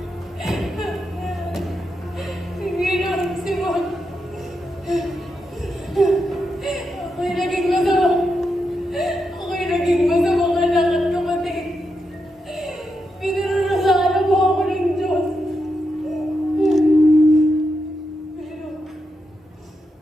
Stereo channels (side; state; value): both; normal; correlation 0.85